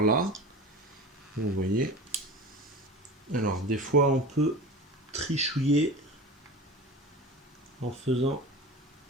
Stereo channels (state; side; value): normal; both; correlation 0.33